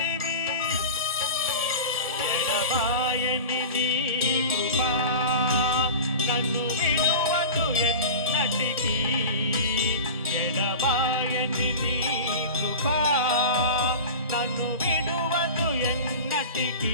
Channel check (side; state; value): both; inverted; correlation -0.32